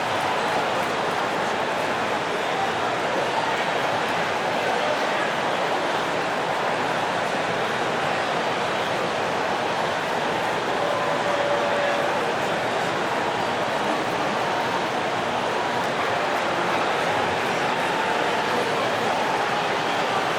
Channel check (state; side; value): identical; both; correlation 1.00